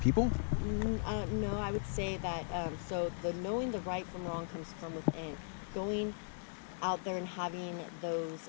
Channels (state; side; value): silent; right; digital silence